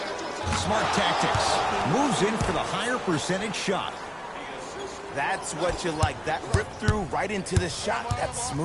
Smart tactics. Moves in for the higher percentage shot. That's what you like. That rip through right into the shot. That's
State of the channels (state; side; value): identical; both; correlation 1.00